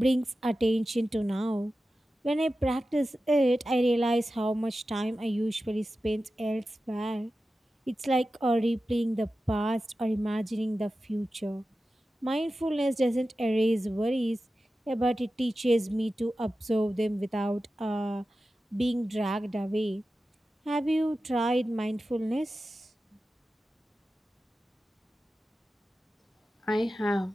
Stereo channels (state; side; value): normal; both; correlation 0.93